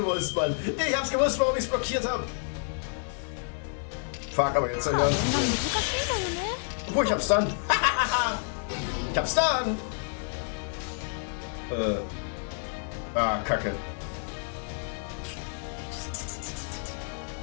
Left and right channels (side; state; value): right; silent; 59 dB below the other